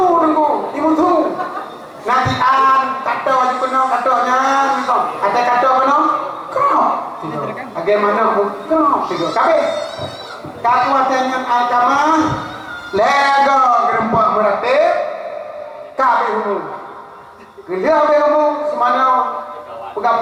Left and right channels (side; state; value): both; identical; correlation 1.00